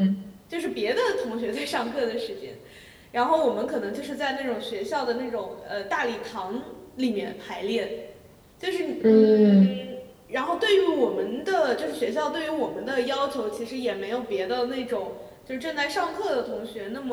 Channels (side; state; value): both; identical; correlation 1.00